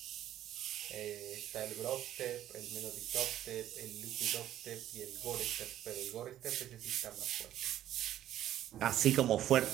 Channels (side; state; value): left; quieter; 12.2 dB